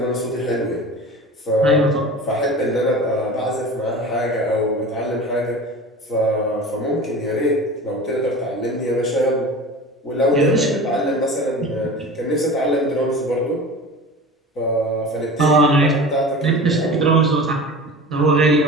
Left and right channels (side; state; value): both; normal; correlation 0.35